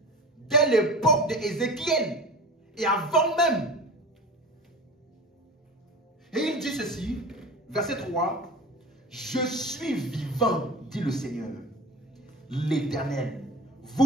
Dès l'époque d'Ézéchiel. Et avant même. Et il dit ceci, verset 3. Je suis vivant, dit le Seigneur, l'Éternel.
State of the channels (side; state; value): both; normal; correlation 0.35